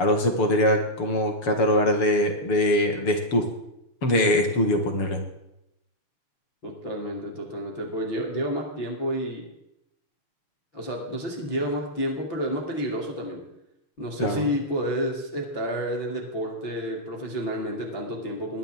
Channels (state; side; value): late; right; 6.8 ms